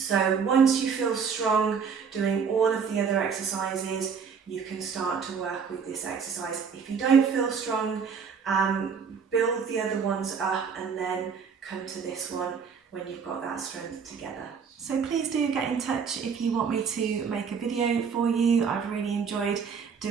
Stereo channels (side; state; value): left; quieter; 6.2 dB